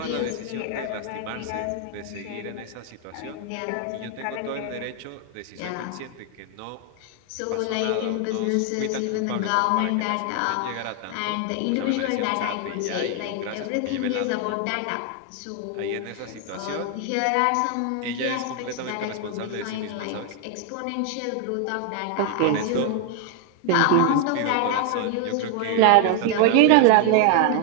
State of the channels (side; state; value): both; different; correlation 0.01